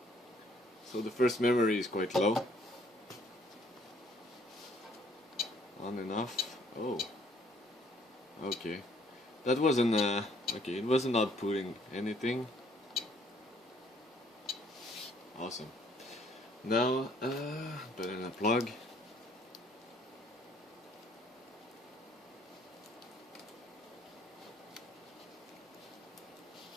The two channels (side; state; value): both; normal; correlation 0.62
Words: So the first memory is quite low. On and off. Oh. Okay. That wasn't okay, it wasn't outputting anything. Awesome. Now put in a plug.